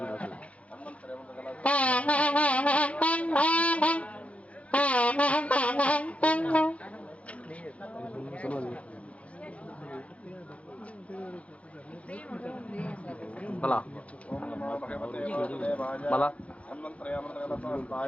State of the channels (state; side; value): late; right; 0.064 ms